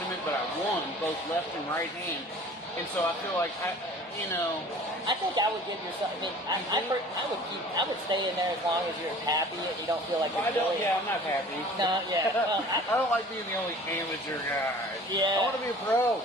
but I won both left and right hand. And so I feel like I think I would give yourself. I mean, I would stay in there as long as you're happy and you don't feel like you're I'm not happy. No, yeah. Well, I don't like being the only amateur guy. Yeah. I want to be a pro.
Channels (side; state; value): both; normal; correlation 0.46